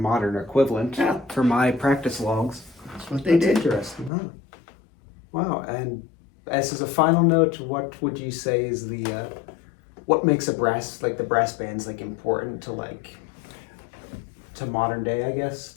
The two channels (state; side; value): drops out; right; at 4.1 s